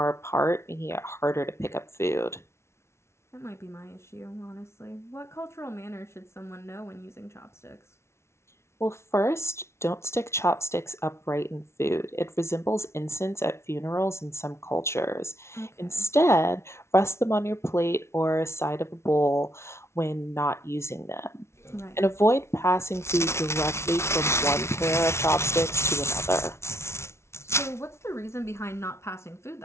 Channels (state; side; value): late; right; 0.13 ms